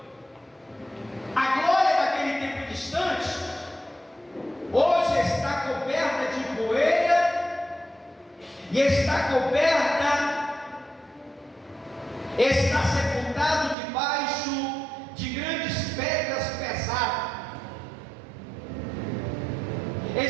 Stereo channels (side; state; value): left; drops out; at 13.8 s